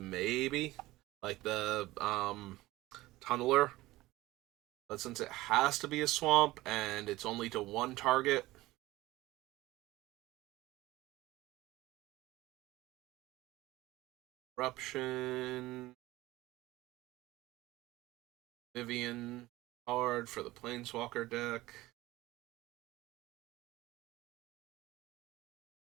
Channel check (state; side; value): quieter; left; 18.1 dB